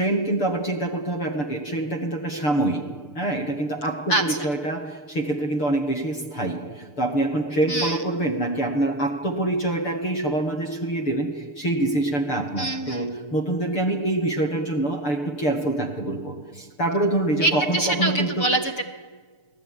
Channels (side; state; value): right; late; 6.8 ms